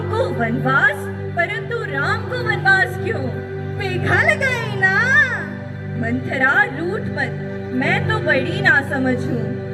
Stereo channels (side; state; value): both; identical; correlation 1.00